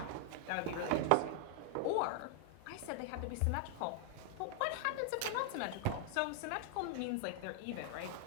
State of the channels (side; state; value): both; different; correlation 0.00